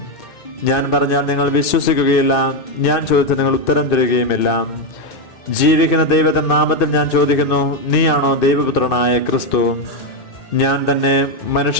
ഞാൻ പറഞ്ഞാൽ നിങ്ങൾ വിശ്വസിക്കുകയില്ല, ഞാൻ ചോദിച്ചാൽ നിങ്ങൾ ഉത്തരം തരികയുമില്ല. ജീവിക്കുന്ന ദൈവത്തിന്റെ നാമത്തിൽ ഞാൻ ചോദിക്കുന്നു, നീയാണോ ദൈവപുത്രനായ ക്രിസ്തു? ഞാൻ തന്നെ.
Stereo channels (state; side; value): late; right; 2.6 ms